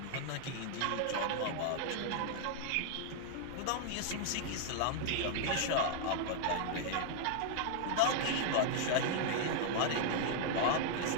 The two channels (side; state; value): both; different; correlation 0.00